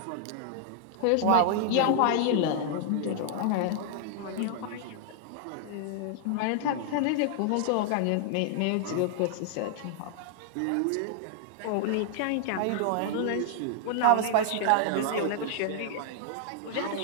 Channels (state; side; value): different; both; correlation -0.01